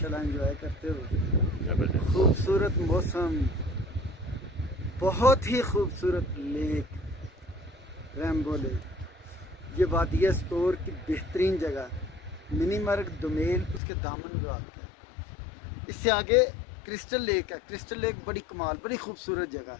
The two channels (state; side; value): drops out; right; at 13.8 s